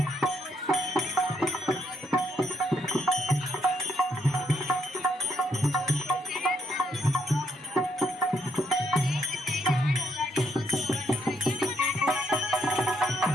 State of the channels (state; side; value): normal; both; correlation 0.74